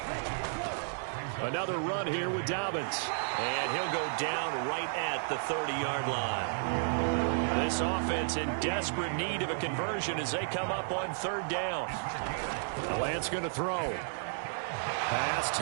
Another run here with Dobbins. And he'll go down right at the 30-yard line. This offense in desperate need of a conversion as they come up on 3rd down. Lance going to throw. Pass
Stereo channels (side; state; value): left; silent; digital silence